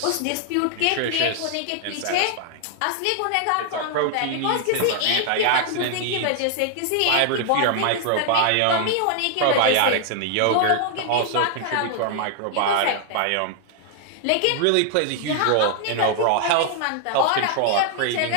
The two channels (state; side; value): different; both; correlation 0.00